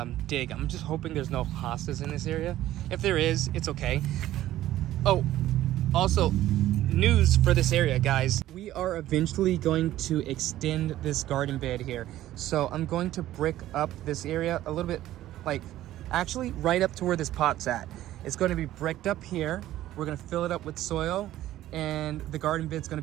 dig. I'm just hoping there's no hostas in this area. If there is, it's okay. Oh, also, news for this area, guys. We are eventually going to extend this garden bed here. So I'm going to brick up this area a little bit, like actually right up to where this pot's at. It's going to be bricked up here. We're going to fill it up with soil, and the garden bed's going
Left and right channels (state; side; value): quieter; left; 14.0 dB